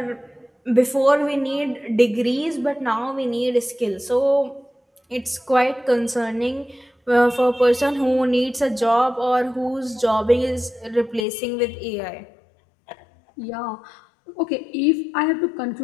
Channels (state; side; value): drops out; right; at 11.2 s